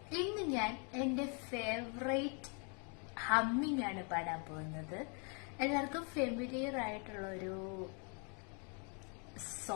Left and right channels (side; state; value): right; quieter; 37.2 dB